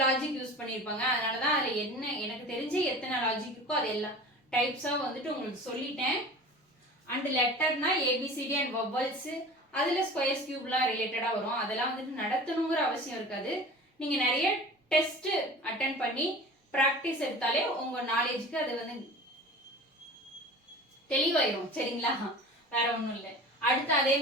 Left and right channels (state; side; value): normal; both; correlation 0.38